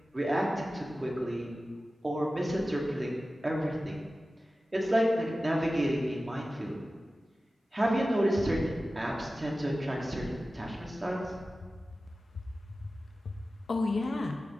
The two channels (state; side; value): normal; both; correlation 0.95